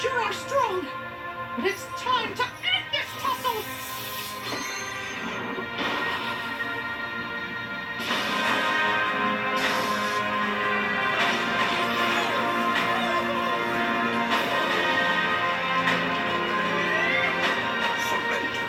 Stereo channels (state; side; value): identical; both; correlation 1.00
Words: are strong. But it's time to end this tussle. Surrender,